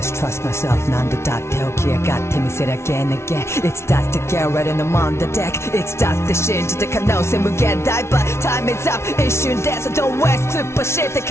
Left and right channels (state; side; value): late; right; 0.13 ms